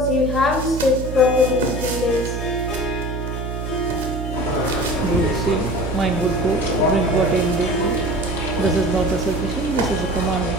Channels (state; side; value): noise; right; hum, 5 dB below the sound